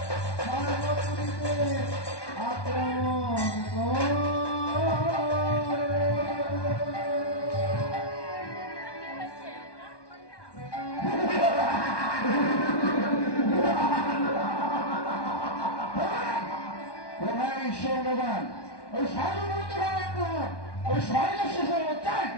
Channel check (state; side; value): late; right; 1.2 ms